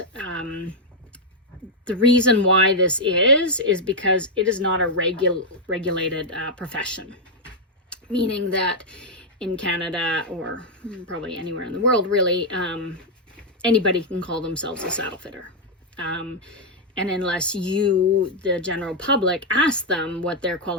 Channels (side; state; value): both; normal; correlation -0.02